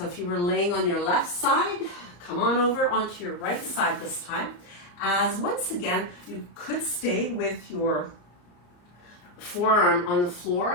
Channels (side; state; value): right; late; 34 ms